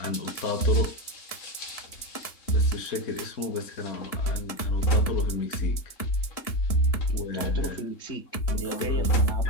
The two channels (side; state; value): right; late; 3.6 ms